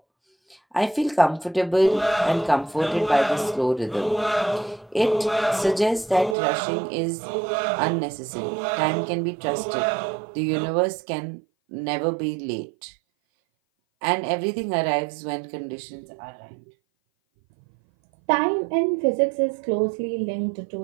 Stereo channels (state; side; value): drops out; left; at 6.4 s